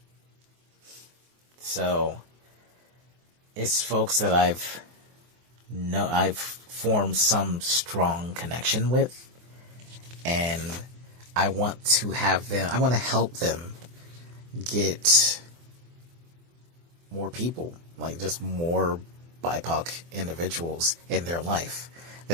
So it's folks that I've formed some strong connection with, and I want to help them get more people, like just more BIPOC individuals in their life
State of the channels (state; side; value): late; left; 24 ms